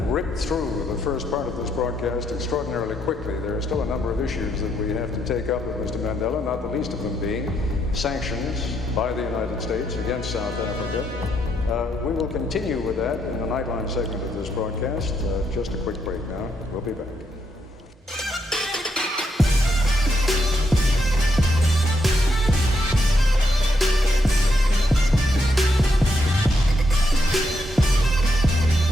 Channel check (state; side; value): normal; both; correlation 0.78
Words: ripped through the first part of this broadcast extraordinarily quickly. There are still a number of issues that we have to take up with Mr. Mandela, not the least of them being sanctions by the United States against South Africa. We will continue with that in the Nightline segment of this broadcast. Just a quick break now. We'll be back.